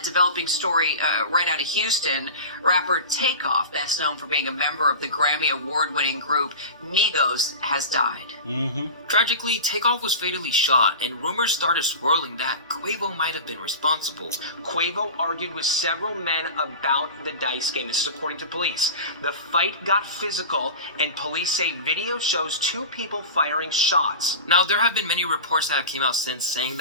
developing story right out of Houston, rapper Takeoff, best known for being a member of the Grammy Award-winning group Migos, has died. Tragically, Takeoff was fatally shot, and rumors started swirling that Quavo might have been responsible. Quavo argued with several men about the dice game. This is according to police. The fight got physical, and police say video shows two people firing shots. Now, there have been many reports that have came out since saying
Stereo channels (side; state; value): both; inverted; correlation -0.30